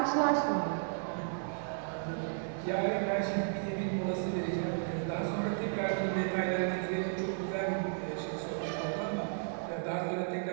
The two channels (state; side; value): silent; left; digital silence